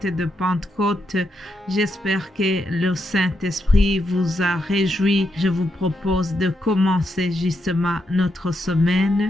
de Pentecôte. J'espère que le Saint-Esprit vous a réjoui. Je vous propose de commencer justement notre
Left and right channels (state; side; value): normal; both; correlation 0.82